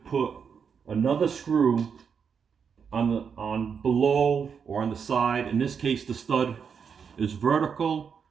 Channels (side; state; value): left; quieter; 6.6 dB